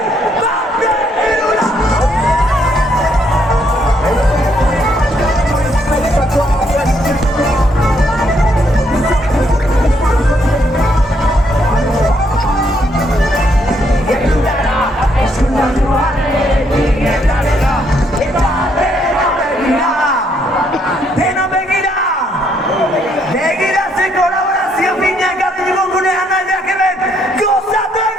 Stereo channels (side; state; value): both; normal; correlation 0.72